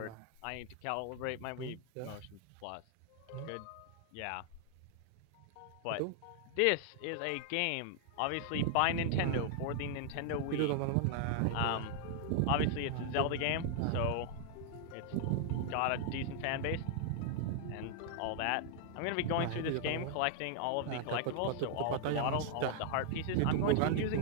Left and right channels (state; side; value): different; both; correlation 0.00